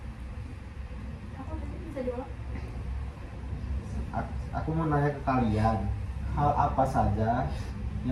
Apa tadi bisa jawab? Aku mau nanya ke kalian, hal apa saja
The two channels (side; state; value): both; identical; correlation 1.00